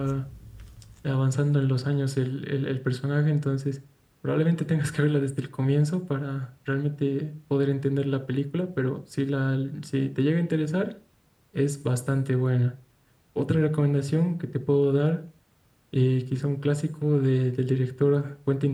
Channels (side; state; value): both; identical; correlation 1.00